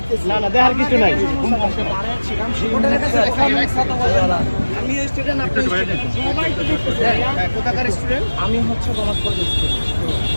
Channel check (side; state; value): both; inverted; correlation -1.00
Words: না না, দেখার কিছু নাই। রিপোর্টারের কাছে দেখা মিথ্যা কথা বলবেন না। আমি স্টুডেন্ট, আপনি স্টুডেন্ট, সবাই তো দেখতেছে। কোথাকার স্টুডেন্ট? আমি হচ্ছে কমার্স কলেজের স্টুডেন্ট।